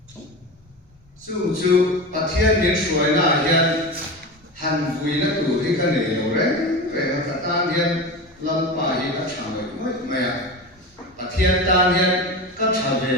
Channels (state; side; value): normal; both; correlation 0.26